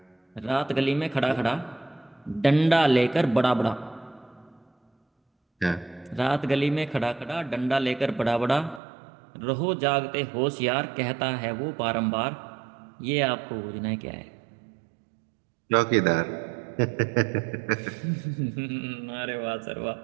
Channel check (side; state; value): left; drops out; at 8.8 s